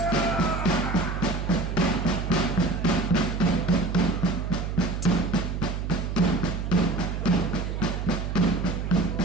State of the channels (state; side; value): noise; right; hum, 3 dB below the sound